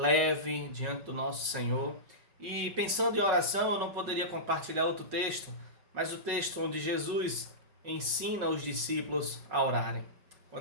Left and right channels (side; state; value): left; late; 5.4 ms